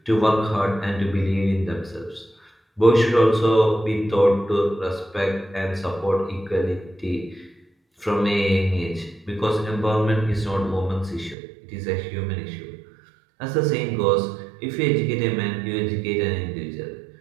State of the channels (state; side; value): drops out; left; at 11.4 s